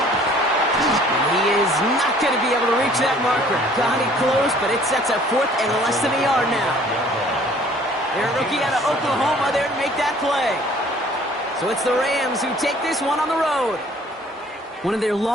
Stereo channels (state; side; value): normal; both; correlation 0.55